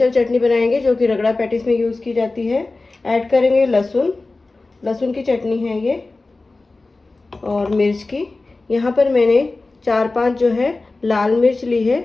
चटनी बनाएंगे जो कि रगड़ा पैटीज में यूज़ की जाती है। ऐड करेंगे लहसुन, लहसुन की चटनी है ये, और मिर्च की। यहाँ पर मैंने 4-5 जो है लाल मिर्च ली है,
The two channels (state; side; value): quieter; right; 3.4 dB